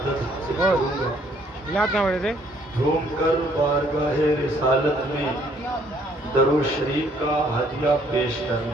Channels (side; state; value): both; normal; correlation 0.64